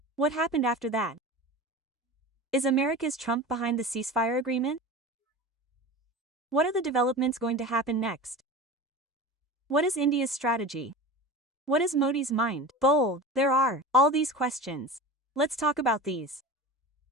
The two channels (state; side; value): normal; both; correlation 0.33